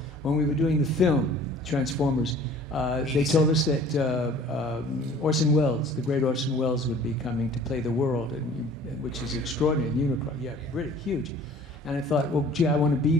when we were doing the film Transformers, they told us that Orson Welles, the great Orson Welles, would be coming to play the world, which is extraordinary. Unicron, really huge. And I thought, well, gee, I want to be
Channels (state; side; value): normal; both; correlation 0.50